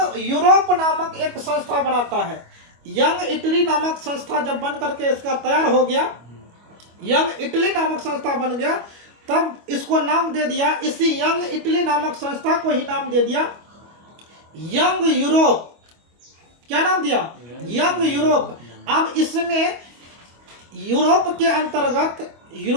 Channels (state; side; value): late; left; 25 ms